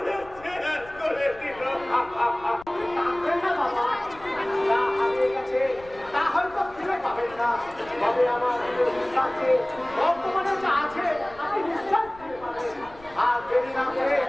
শেষ করে দিল। তা হয়তো ফিরে পাবেন না, তবে আমার কাছে বর্তমানে যা আছে আপনি নিশ্চয় ফিরে পাবেন। আর দেরি না করে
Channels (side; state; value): left; noise; rumble, 22 dB below the sound